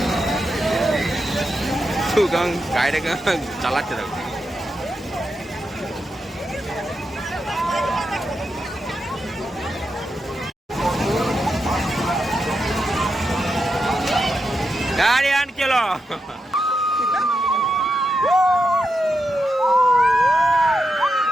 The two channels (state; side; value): normal; both; correlation 0.86